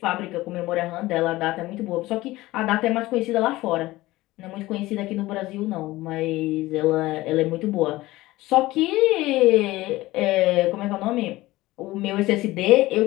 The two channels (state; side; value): quieter; right; 18.3 dB